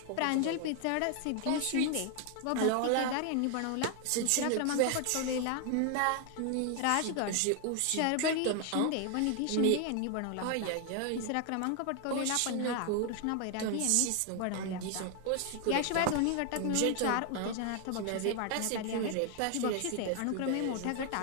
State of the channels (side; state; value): both; different; correlation 0.00